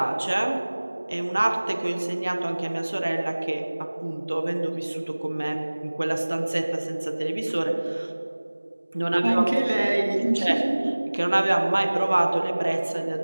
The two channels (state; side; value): inverted; both; correlation -1.00